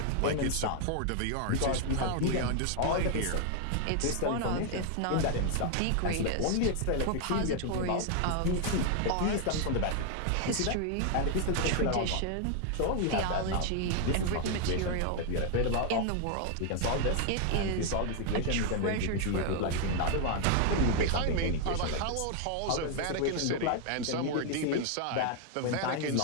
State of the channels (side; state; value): both; different; correlation 0.00